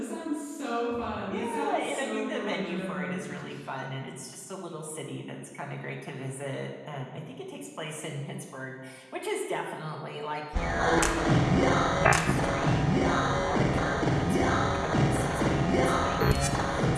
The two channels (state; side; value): identical; both; correlation 1.00